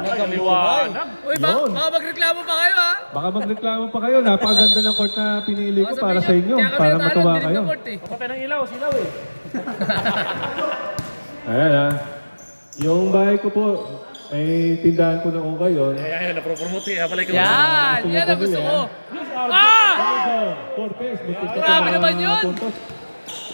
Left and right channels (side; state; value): both; inverted; correlation -1.00